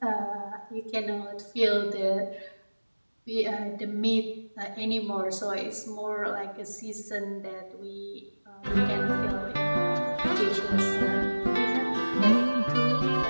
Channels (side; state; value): both; inverted; correlation -1.00